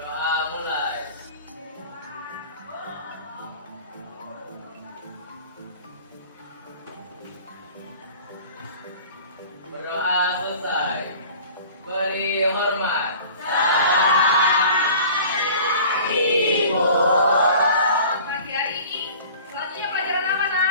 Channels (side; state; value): both; inverted; correlation -0.44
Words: mulai. Berdoa selesai. Beri hormat. Pagi hari ini selanjutnya pelajaran apa,